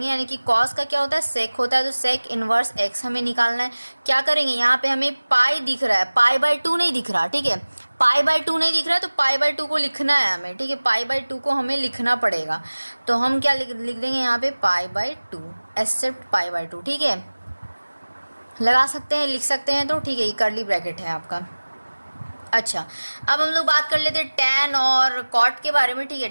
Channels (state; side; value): inverted; both; correlation -1.00